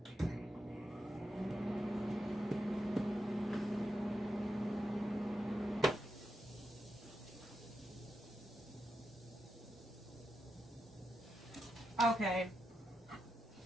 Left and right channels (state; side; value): normal; both; correlation 0.86